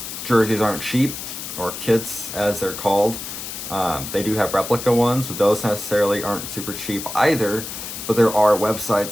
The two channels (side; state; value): left; noise; hiss, 8 dB below the sound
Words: jerseys aren't cheap, or kits as they're called. They do have replica ones, but those necessarily aren't super cheap either. But there are